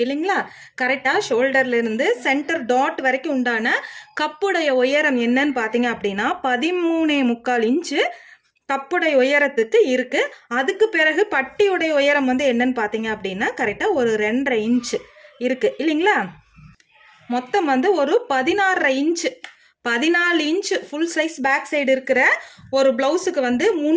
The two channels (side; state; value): both; identical; correlation 1.00